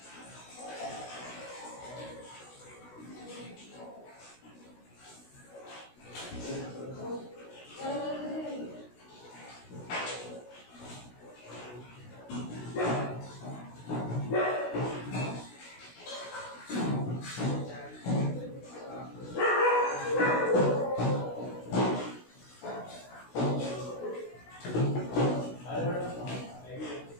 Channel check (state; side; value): late; right; 16 ms